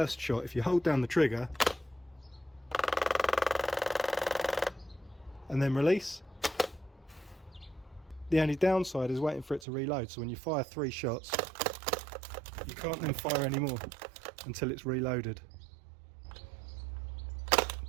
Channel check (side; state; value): left; drops out; at 9.7 s